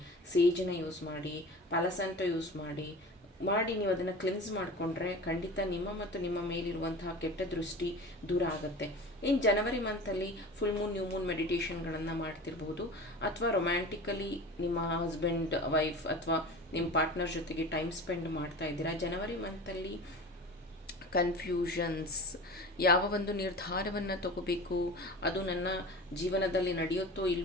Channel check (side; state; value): both; normal; correlation 0.35